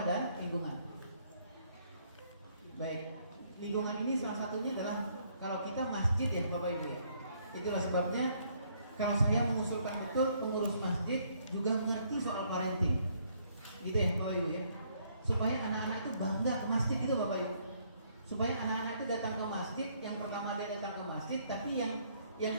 dan lingkungan. Baik, lingkungan ini salah satunya adalah kalau kita masjid ya Bapak Ibu ya. Itulah sebabnya kalau saya mengusulkan betul pengurus masjid juga mengerti soal parenting. Gitu ya Bapak Ibu ya. Supaya anak-anak itu bangga ke masjid gitu Bapak Ibu. Supaya anak-anak itu datang ke masjid, yang pertama dia datang ke masjid, tapi yang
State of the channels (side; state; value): both; inverted; correlation -0.68